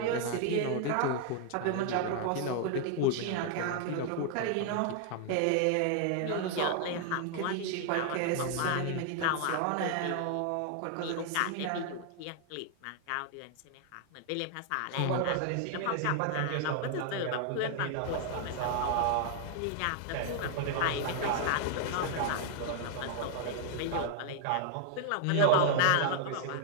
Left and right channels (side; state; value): both; different; correlation 0.00